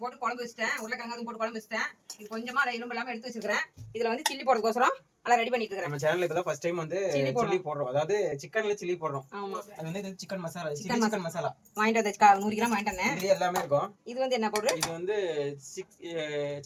போட்டு குழம்பு வச்சிட்டேன். உருளைக்கிழங்கு போட்டு குழம்பு வச்சிட்டேன். இது கொஞ்சமா அதை எலும்பு இல்லாம எடுத்து வச்சிருக்கேன். இதுல வந்து சில்லி போடுறதுக்கோசரம் எல்லாம் ரெடி பண்ணிட்டு இருக்கேன். நம்ம சேனல்ல இப்பதான் ஃபர்ஸ்ட் டைம் வந்து சில்லி போடுறோம். அதாவது சிக்கன்ல சில்லி போடுறோம். ஆமா, அது வந்து இது சிக்கன் மசாலா, சிக்கன் மசாலா வாங்கிட்டு வந்தேன். 100 கிராம் வாங்கிட்டு வந்தேன். இது எல்லாமே இருக்கும். இது வந்து என்ன பவுடர்? இது வந்து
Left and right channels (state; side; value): identical; both; correlation 1.00